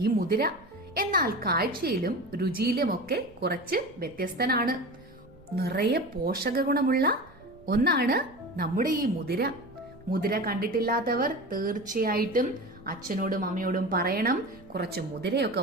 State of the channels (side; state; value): right; noise; rumble, 25 dB below the sound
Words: മുതിര. എന്നാൽ കാഴ്ചയിലും രുചിയിലുമൊക്കെ കുറച്ച് വ്യത്യസ്തനാണ്. നിറയെ പോഷക ഗുണമുള്ള ഒന്നാണ് നമ്മുടെ ഈ മുതിര. മുതിര കണ്ടിട്ടില്ലാത്തവർ തീർച്ചയായിട്ടും അച്ഛനോടും അമ്മയോടും പറയണം, കുറച്ച് മുതിരയൊക്കെ